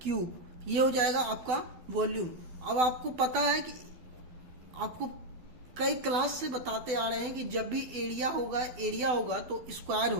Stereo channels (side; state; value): left; late; 12 ms